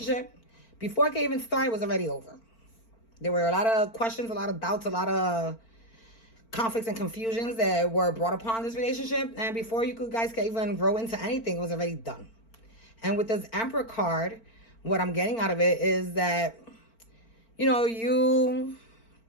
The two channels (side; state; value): right; late; 4.4 ms